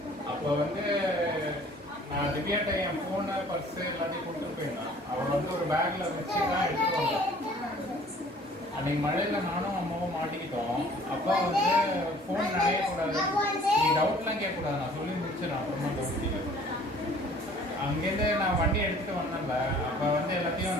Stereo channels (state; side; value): normal; both; correlation 0.53